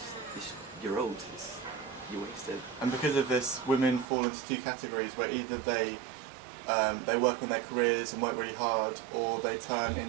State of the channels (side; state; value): left; drops out; at 4.0 s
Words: you're old. You're wasted. And because of this, women fall into two categories, where either they work on their careers and work really hard, or they turn